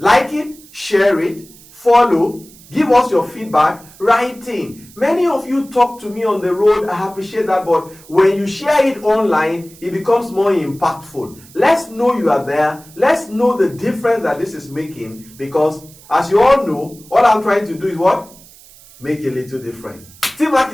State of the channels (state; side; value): noise; right; hiss, 23 dB below the sound